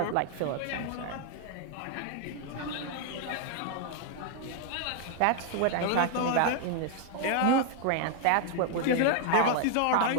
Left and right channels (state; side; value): different; both; correlation 0.01